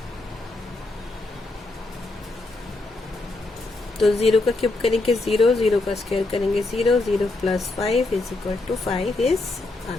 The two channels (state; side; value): quieter; right; 3.0 dB